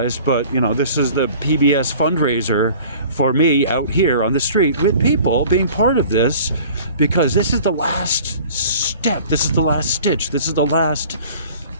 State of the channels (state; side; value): inverted; both; correlation -0.46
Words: but, this is the PBS fundraiser for me out here on the street with people being part of this, because this is the last step. This is the last stitch. This is the last